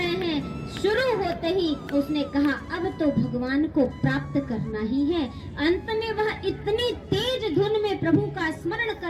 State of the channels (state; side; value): identical; both; correlation 1.00